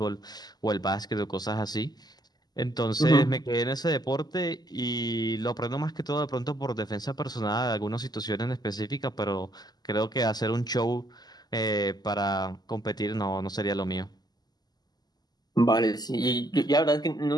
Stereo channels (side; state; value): right; late; 0.20 ms